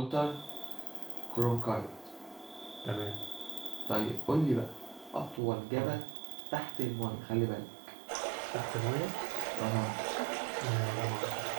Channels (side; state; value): left; drops out; at 5.4 s